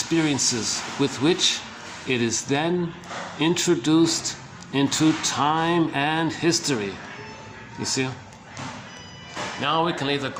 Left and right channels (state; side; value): identical; both; correlation 1.00